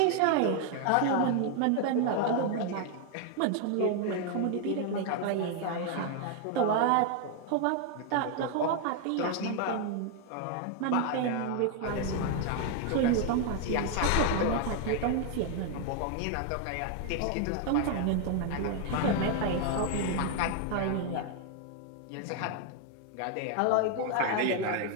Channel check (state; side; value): different; both; correlation 0.00